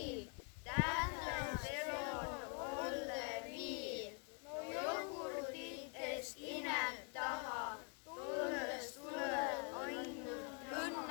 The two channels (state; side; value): quieter; right; 37.8 dB